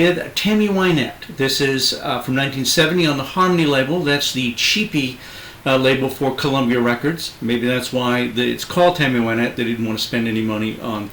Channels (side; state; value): both; identical; correlation 1.00